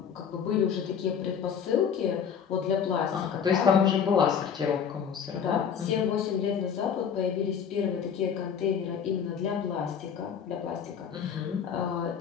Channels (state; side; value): quieter; right; 7.5 dB